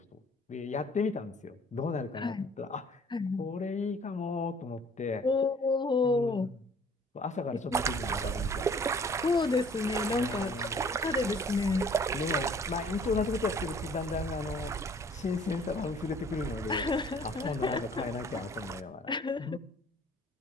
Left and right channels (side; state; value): both; normal; correlation 0.54